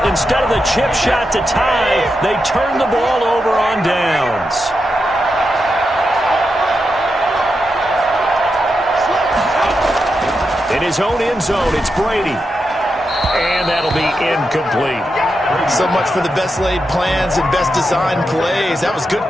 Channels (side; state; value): both; normal; correlation 0.87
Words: instead of the chip shot to tie, they turn the ball over on downs. In his own end zone, it's Brady. And that'll be incomplete. So much for the best laid plans and best designed plays. That was good